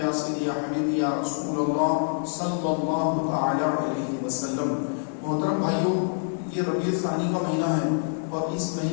یا سیدی یا حبیبی یا رسول اللہ صلی اللہ تعالی علیہ وسلم۔ محترم بھائیوں، یہ ربیع الثانی کا مہینہ ہے اور اس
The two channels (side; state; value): right; silent; digital silence